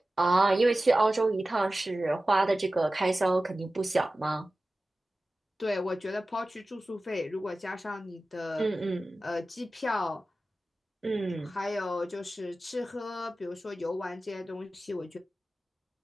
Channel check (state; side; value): normal; both; correlation 0.95